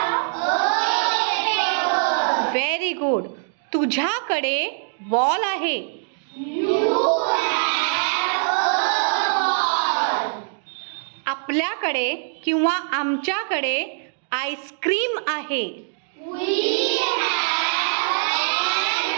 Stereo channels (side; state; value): left; silent; digital silence